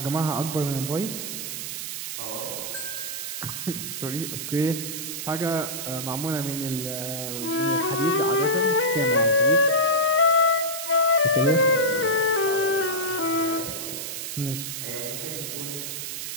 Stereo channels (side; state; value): right; noise; hiss, 6 dB below the sound